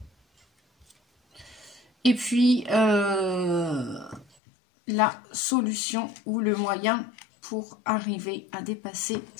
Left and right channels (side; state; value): right; drops out; at 4.2 s